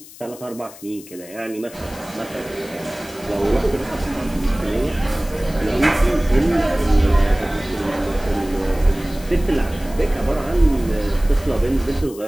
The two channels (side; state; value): left; noise; hiss, 19 dB below the sound